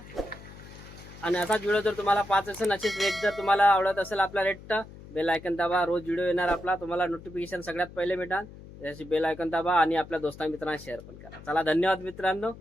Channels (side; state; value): left; noise; hum, 17 dB below the sound